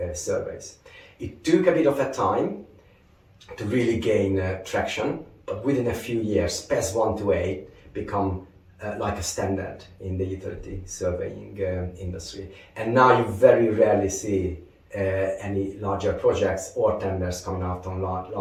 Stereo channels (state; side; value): identical; both; correlation 1.00